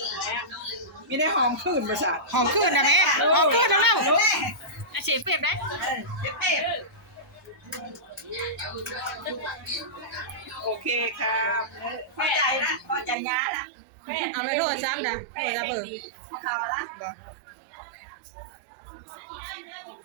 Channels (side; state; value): left; drops out; at 13.2 s